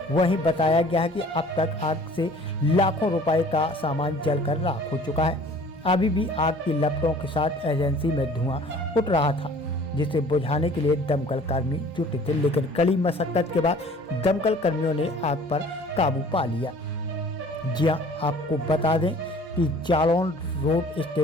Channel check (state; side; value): normal; both; correlation 0.50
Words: वहीं बताया गया है कि अब तक आग से लाखों रुपए का सामान जलकर राख हो चुका है। अभी भी आग की लपटों के साथ एजेंसी में धुआं उठ रहा था, जिसे बुझाने के लिए दमकल कर्मी जुटे थे, लेकिन कड़ी मशक्कत के बाद दमकल कर्मियों ने आग पर काबू पा लिया। जी हां, आपको बता दें कि जालौन रोड